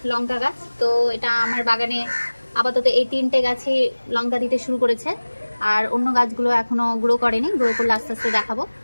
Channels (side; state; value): both; inverted; correlation -1.00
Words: লঙ্কা গাছ। তো এটা আমার বাগানে আপাতত এই 3টে গাছই লঙ্কা দিতে শুরু করেছে, আর অন্য গাছগুলো এখনো গ্রো করেনি, গ্রো করলে আস্তে আস্তে দেখাবো।